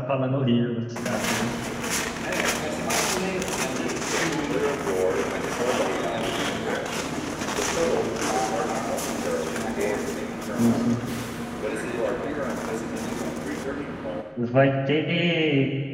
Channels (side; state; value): both; identical; correlation 1.00